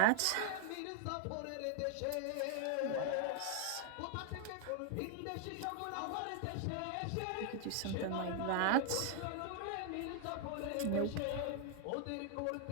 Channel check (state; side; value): different; both; correlation 0.00